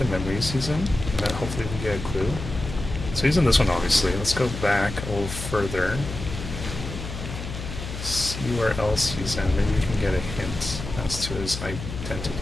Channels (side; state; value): left; noise; hum, 8 dB below the sound